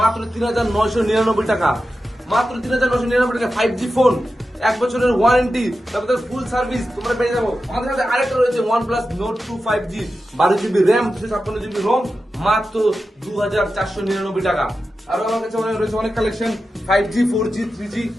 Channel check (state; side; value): normal; both; correlation 0.92